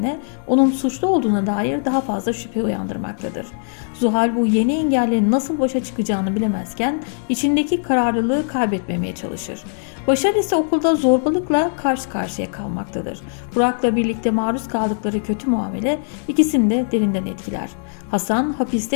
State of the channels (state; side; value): silent; right; 65 dB below the other